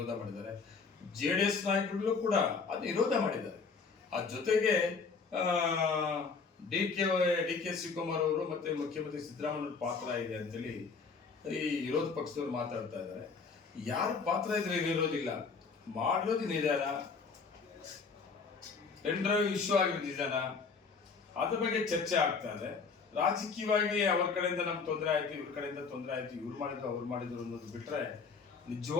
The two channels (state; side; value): quieter; right; 5.0 dB